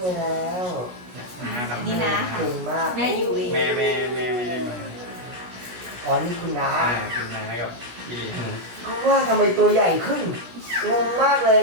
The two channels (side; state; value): left; late; 16 ms